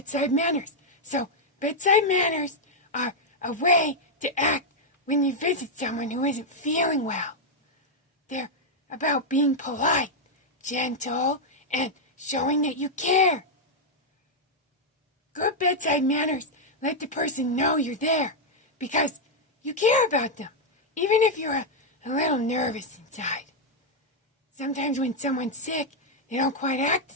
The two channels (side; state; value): both; normal; correlation -0.02